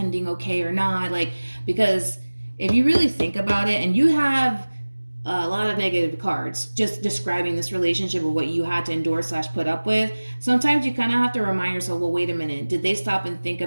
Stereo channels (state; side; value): inverted; both; correlation -1.00